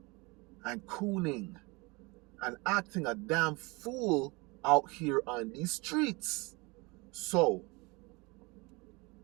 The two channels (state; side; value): quieter; left; 26.4 dB